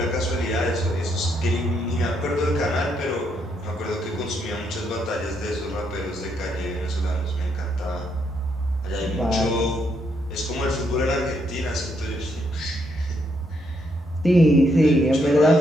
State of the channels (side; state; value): both; normal; correlation 0.76